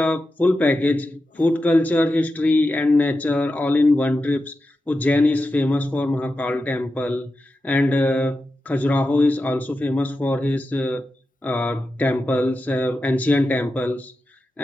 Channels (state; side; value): normal; both; correlation 0.91